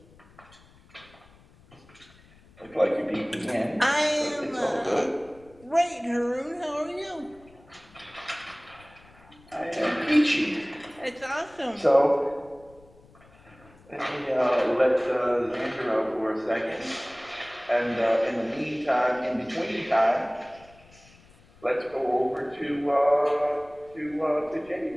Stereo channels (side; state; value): left; noise; rumble, 26 dB below the sound